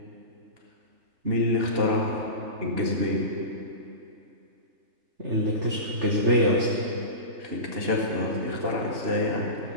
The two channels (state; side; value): late; left; 3.4 ms